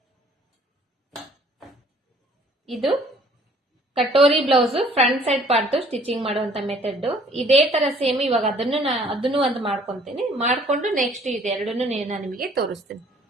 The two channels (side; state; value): both; normal; correlation 0.57